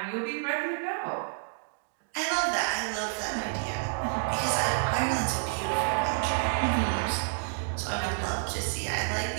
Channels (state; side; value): silent; left; digital silence